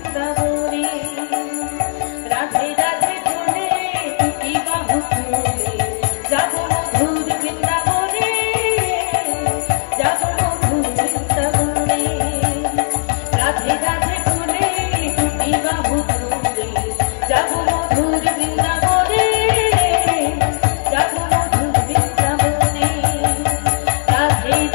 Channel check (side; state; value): right; silent; digital silence